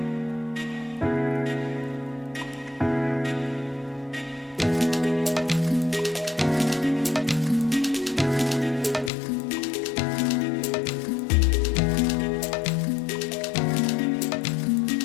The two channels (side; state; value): right; drops out; at 9.1 s